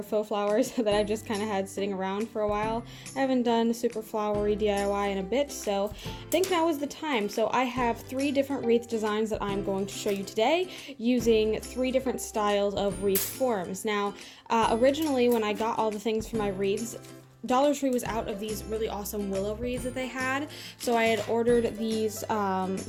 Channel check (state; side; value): identical; both; correlation 1.00